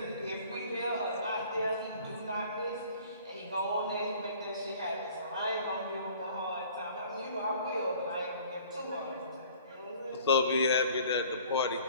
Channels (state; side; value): inverted; both; correlation -0.51